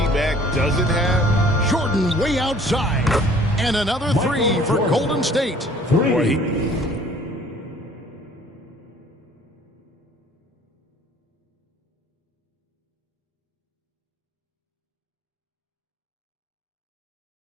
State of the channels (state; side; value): normal; both; correlation 0.53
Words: doesn't have? Jordan way outside. And another 3 for Golden State. Boy,